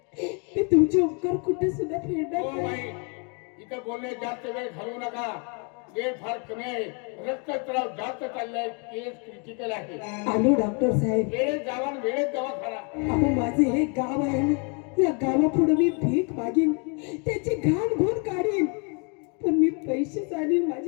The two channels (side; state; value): right; quieter; 36.0 dB